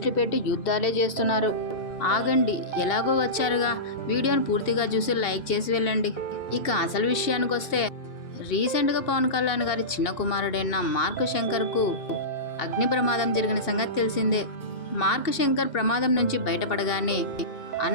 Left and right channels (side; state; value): right; late; 2.7 ms